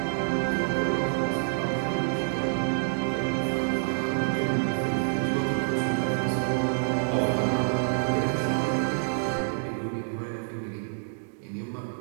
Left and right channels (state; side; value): silent; left; digital silence